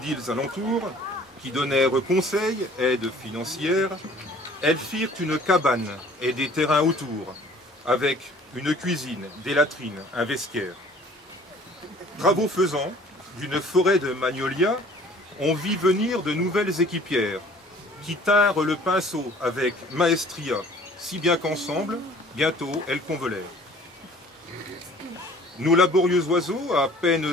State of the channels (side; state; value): both; normal; correlation 0.52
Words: alentours, qui donnèrent conseils, aide financière, elles firent une cabane et des terrains autour, avec une cuisine, des latrines, un vestiaire. Travaux faisant, d'une forêt de magnolias, on vit venir de nouvelles équipières, qui tinrent le pinceau avec maestria, si bien qu'ensemble, bientôt, elles convolèrent. Nos laborieux oiseaux, à peine